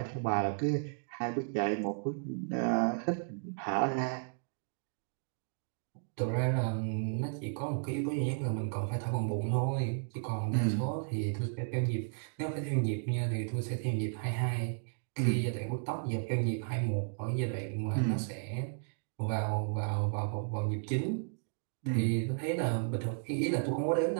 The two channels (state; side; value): silent; left; digital silence